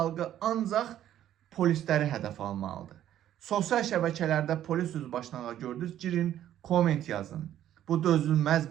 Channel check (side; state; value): left; quieter; 11.6 dB